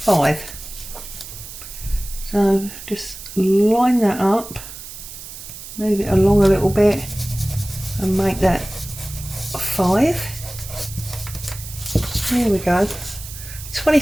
So just line that up, move it along a little bit and make that 5. Here we go,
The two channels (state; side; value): noise; right; hiss, 13 dB below the sound